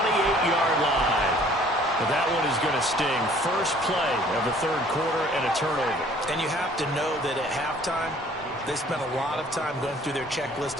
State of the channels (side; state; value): both; normal; correlation 0.55